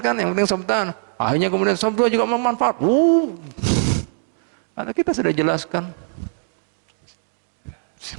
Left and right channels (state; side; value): silent; left; digital silence